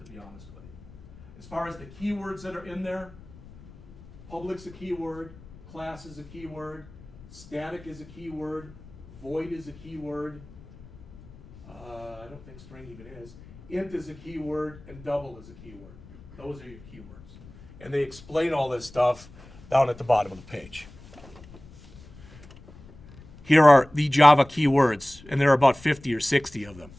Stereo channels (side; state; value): left; noise; rumble, 20 dB below the sound